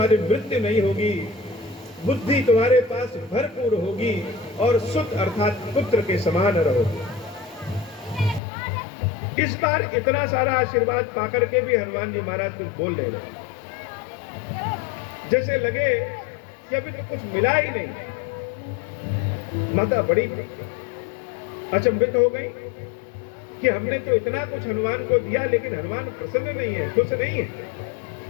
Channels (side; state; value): right; drops out; at 8.4 s